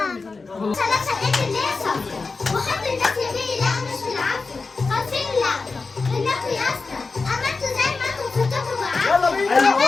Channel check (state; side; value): quieter; right; 4.1 dB